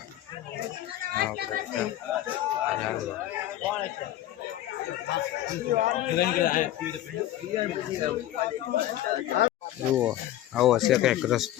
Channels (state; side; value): quieter; right; 13.4 dB